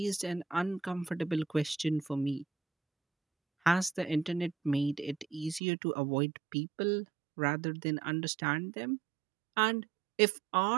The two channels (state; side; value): drops out; left; at 5.6 s